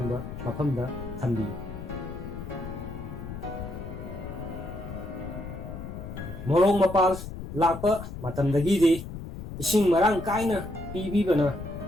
ꯃꯐꯝꯗ ꯊꯝꯕꯤꯌꯨ꯫ ꯃꯣꯔꯣꯛ ꯃꯄꯥꯜ ꯂꯥꯛꯄ ꯃꯇꯝꯗꯒꯤꯗꯤ ꯏꯁꯤꯡ ꯃꯔꯥꯡ ꯀꯥꯏꯅ ꯄꯤꯕꯤꯕꯅ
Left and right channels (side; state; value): left; noise; rumble, 9 dB below the sound